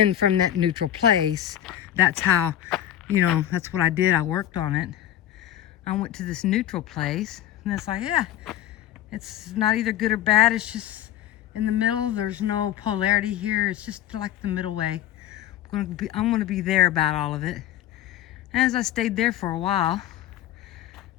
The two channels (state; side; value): quieter; right; 12.0 dB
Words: from that neutral place, that's how, that's what I did. I worked on it. I went to this neutral place, and it's like, yeah, it's not either good or bad. It's just in the middle. There's no polarity here. It's just like the middle way. I'm going to be there about all of it. And as I stayed there for a while,